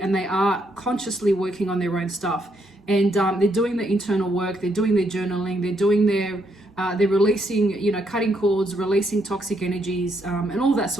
and they are consciously working on their own stuff. And they're doing the internal work, they're doing their journaling, they're doing they're releasing, cutting cords, releasing toxic energies, and all that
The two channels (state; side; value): normal; both; correlation 0.75